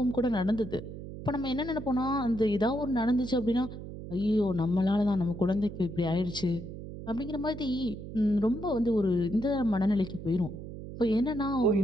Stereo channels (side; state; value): right; noise; hum, 11 dB below the sound